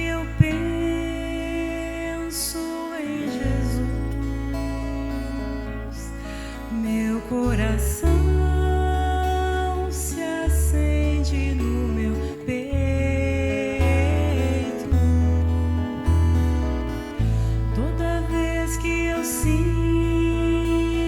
eu penso em Jesus, meu coração se acende no meu peito. Toda vez que eu sinto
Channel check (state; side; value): identical; both; correlation 1.00